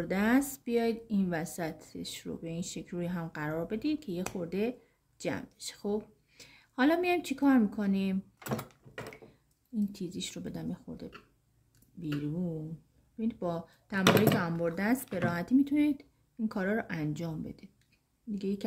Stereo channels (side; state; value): both; identical; correlation 1.00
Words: دست بیاید این وسطش رو به این شکل روی هم قرار بدید که یه خورده جمع بشه. خب حالا میایم چی کار میکنیم؟ این تیزیش رو بدم یه خورده بیرون. ببینید با تمایلی انبر دست به راحتی میتونید این کارا رو انجام بدید. دیگه یکی